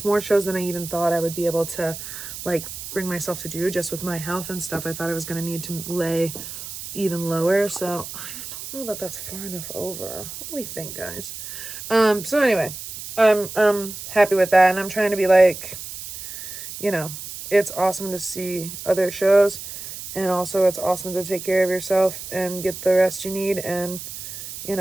more shows than I even thought I would be able to, like, bring myself to do just with my health and stuff. I thought I was going to need to lay even lower, so I don't know that that's far enough over. What do we think, guys? So anyway, I'm happy with that, and I'm trying to be like, it's awesome to see other shows, and also it's awesome to take care of yourself and get the rest you need, and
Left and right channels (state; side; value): noise; right; hiss, 10 dB below the sound